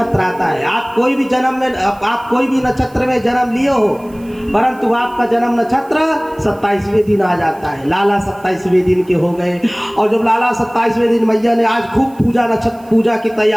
आता है। आप कोई भी नक्षत्र में जन्म लिए हो, परंतु आपका जन्म नक्षत्र 27वें दिन आ जाता है। लाला 27वें दिन के हो गए, और जब लाला 27वें दिन मैया ने आज खूब पूजा की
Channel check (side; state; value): right; noise; hiss, 28 dB below the sound